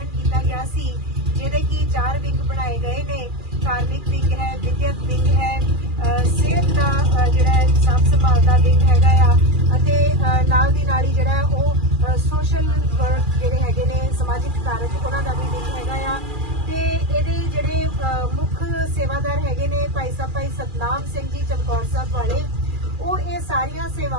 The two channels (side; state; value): left; late; 2.4 ms